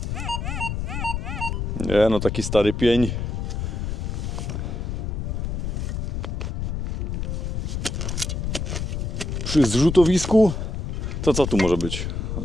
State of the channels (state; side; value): noise; left; rumble, 3 dB below the sound